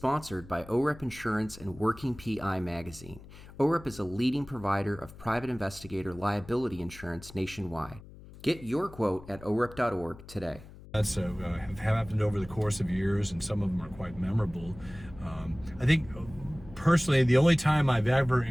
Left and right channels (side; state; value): left; noise; hum, 18 dB below the sound